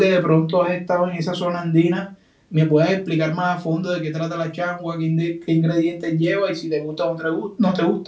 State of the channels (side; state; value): both; identical; correlation 1.00